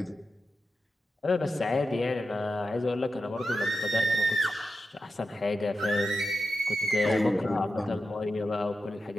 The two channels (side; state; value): both; normal; correlation 0.90